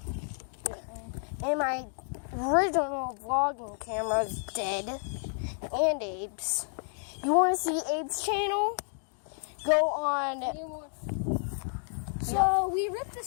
And my original vlogging camera is dead. And Abe's. You want to see Abe's channel? Go on. So we ripped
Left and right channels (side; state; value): right; silent; 57 dB below the other